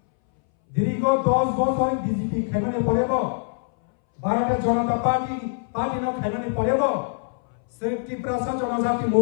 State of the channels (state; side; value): silent; right; 61 dB below the other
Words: দীর্ঘ 10 বছর বিজেপি খাইমানে পড়েব ভারতের জনতা পার্টি ন খাইমানে পড়েব সেই ত্রিপুরা জনজাতি